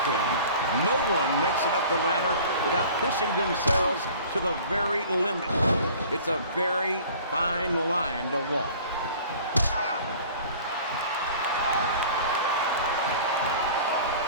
King, no one makes it up the ladder without pushing themselves to the very limit. It's a very fine line to walk.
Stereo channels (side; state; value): both; inverted; correlation -0.46